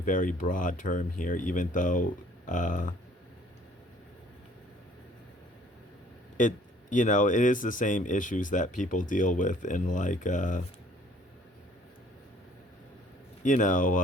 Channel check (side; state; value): both; normal; correlation 0.57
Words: broad term here, even though it is the same issues that people deal with in like